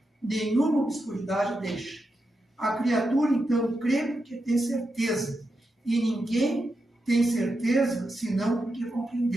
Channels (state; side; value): normal; both; correlation 0.87